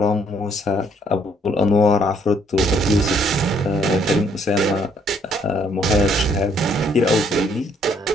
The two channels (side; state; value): both; normal; correlation 0.67